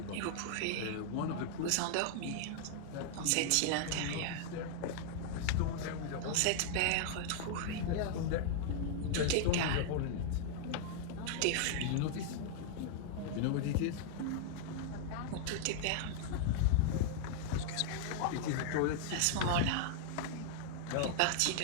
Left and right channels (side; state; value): both; different; correlation 0.00